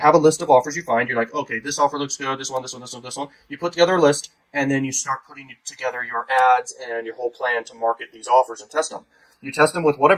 a list of offers you find. You're like, okay, this offer looks good. This one, this one, this one, this one. You put together a list, and then you start putting together your ads and your whole plan to market these offers and test them. You test them with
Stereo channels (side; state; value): both; identical; correlation 1.00